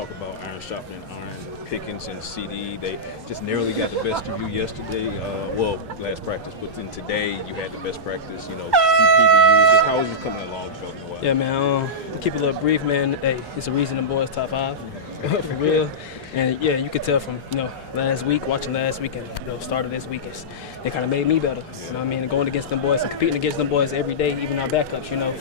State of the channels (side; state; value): both; normal; correlation -0.14